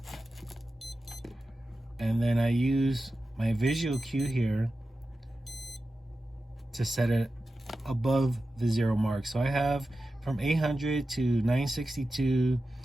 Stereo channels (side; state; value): both; normal; correlation 0.93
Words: and then I use my visual cue here to set it above the 0 mark. So I have from 800 to 962